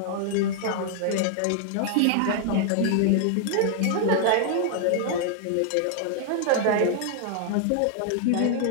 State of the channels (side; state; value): both; different; correlation 0.00